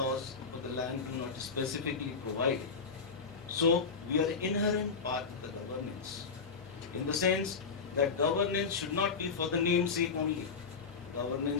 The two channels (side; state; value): right; quieter; 5.2 dB